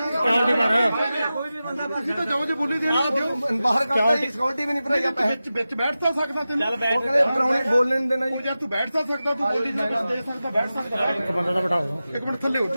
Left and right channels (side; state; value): both; inverted; correlation -0.94